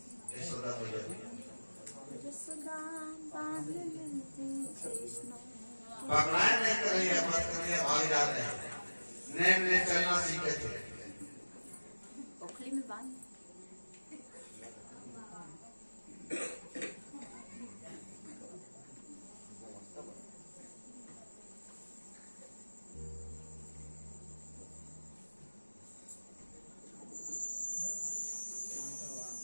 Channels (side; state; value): both; inverted; correlation -1.00